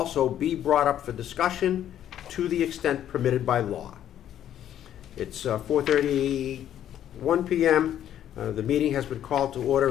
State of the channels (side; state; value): right; quieter; 10.9 dB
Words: be brought up for discussion to the extent permitted by law. It's 4:31 p.m. The meeting has been called to